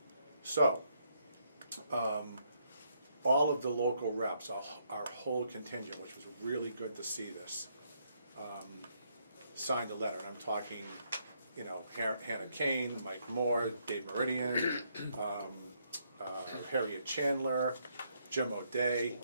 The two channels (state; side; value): inverted; both; correlation -0.74